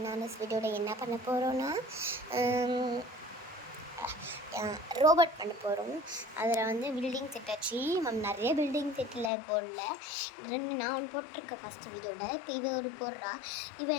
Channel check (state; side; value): drops out; right; at 9.3 s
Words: வீடியோவில் என்ன பண்ண போகிறோன்னா ரோபோட் பண்ண போகிறோம். அதில் வந்து பில்டிங் செட் ஆச்சு. நிறைய பில்டிங் செட்டில் போடல, நான் ஒன்று போட்டிருக்கேன் ஃபஸ்ட்டு வீடியோவில். இப்போ இவன் ஒரு போடுறா.